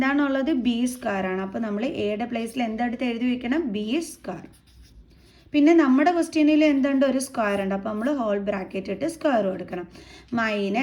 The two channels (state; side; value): identical; both; correlation 1.00